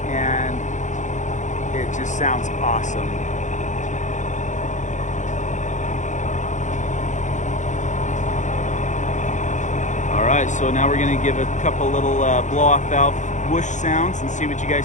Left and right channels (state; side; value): late; right; 0.35 ms